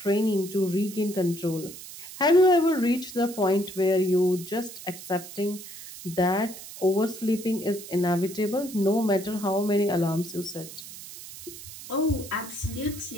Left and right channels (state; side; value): noise; right; hiss, 14 dB below the sound